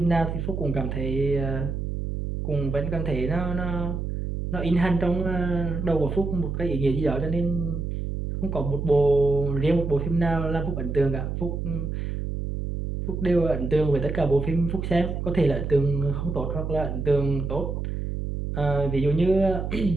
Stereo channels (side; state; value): right; noise; hum, 3 dB below the sound